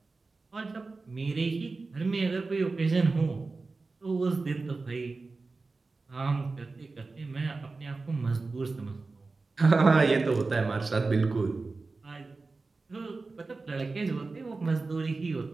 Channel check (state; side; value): quieter; left; 3.8 dB